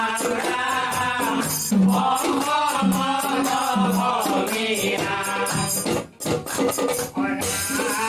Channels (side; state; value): both; identical; correlation 1.00